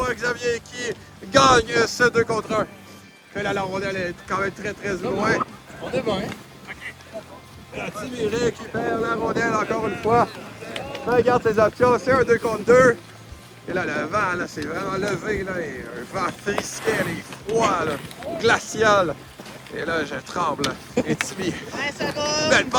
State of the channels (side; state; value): both; identical; correlation 1.00